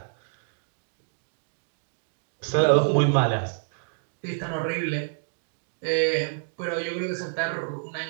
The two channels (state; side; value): silent; left; 59 dB below the other